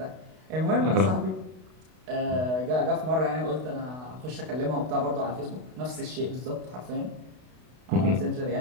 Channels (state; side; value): late; left; 32 ms